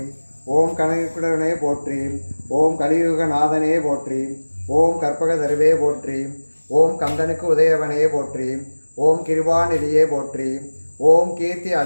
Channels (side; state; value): both; inverted; correlation -1.00